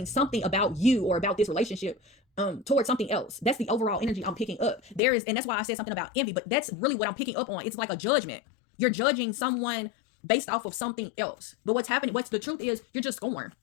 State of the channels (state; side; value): drops out; right; at 5.0 s